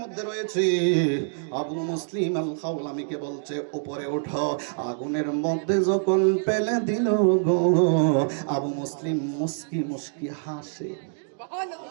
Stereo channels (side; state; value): left; silent; digital silence